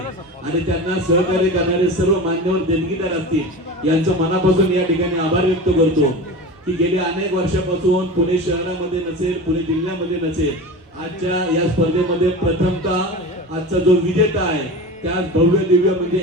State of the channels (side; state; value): both; normal; correlation 0.30